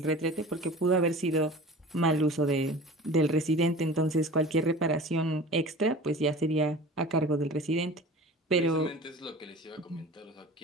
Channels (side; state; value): both; normal; correlation 0.39